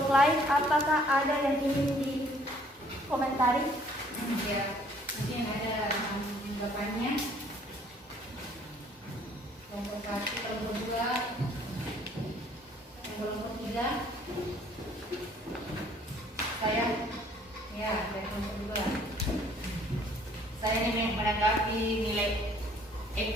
lain, apakah ada yang ingin dikomentari? Ya, mungkin ada tanggapannya. Kelompok 1, kelompok 2, kelompok 3. Saya, ya, dari kelompok 2. Saya ingin menanggapi nilai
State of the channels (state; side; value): normal; both; correlation 0.59